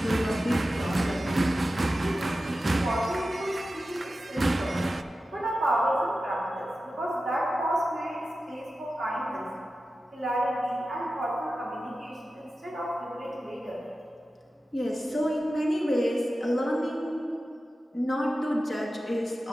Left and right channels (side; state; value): both; normal; correlation 0.94